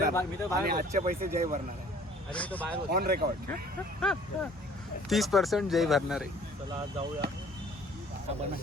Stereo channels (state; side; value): normal; both; correlation 0.54